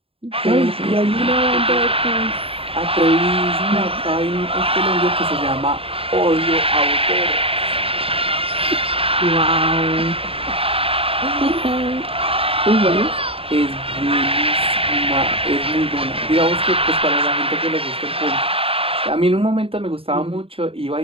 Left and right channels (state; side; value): late; left; 0.27 ms